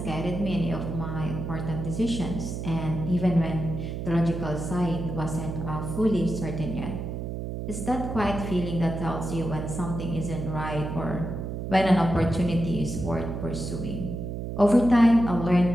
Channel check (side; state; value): right; noise; hum, 5 dB below the sound